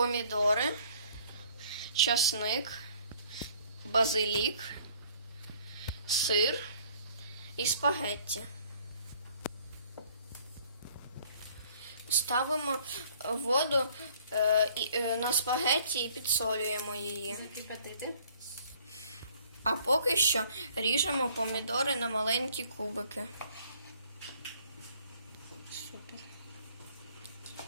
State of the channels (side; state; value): both; inverted; correlation -0.57